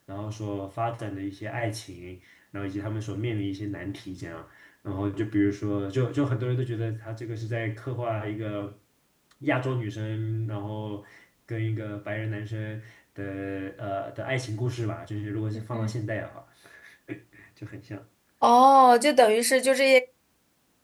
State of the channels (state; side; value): identical; both; correlation 1.00